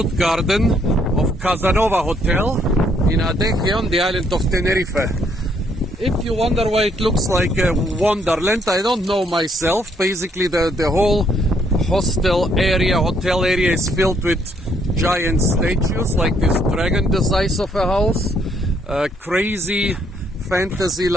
garden of Casanova Hotel in Adeje on the island of Tenerife. If you wonder why it looks like a wonderland, I don't know myself. Basically the whole hotel area is filled with giant statues like this dragon the size of a house, crazy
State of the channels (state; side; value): normal; both; correlation 0.69